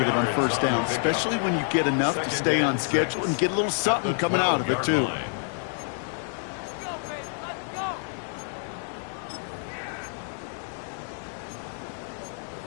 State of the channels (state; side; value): silent; right; 55 dB below the other